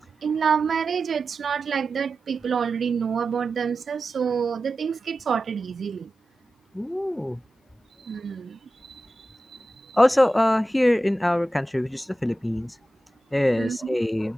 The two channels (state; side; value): normal; both; correlation 0.93